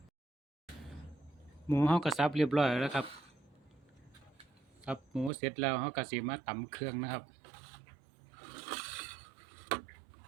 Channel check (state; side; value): drops out; left; at 5.3 s